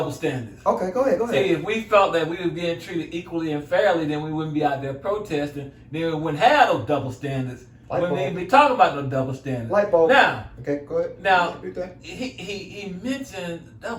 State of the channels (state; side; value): identical; both; correlation 1.00